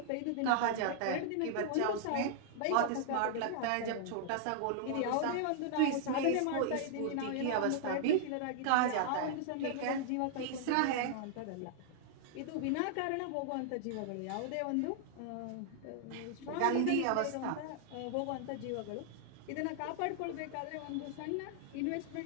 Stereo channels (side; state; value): both; different; correlation -0.01